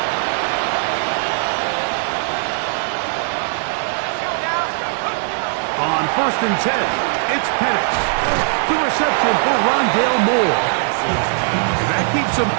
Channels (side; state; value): left; silent; digital silence